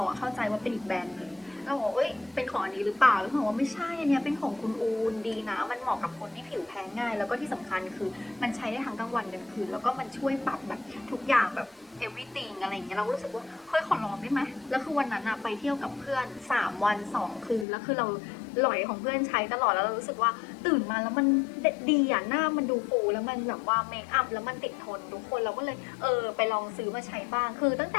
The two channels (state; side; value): drops out; right; at 17.7 s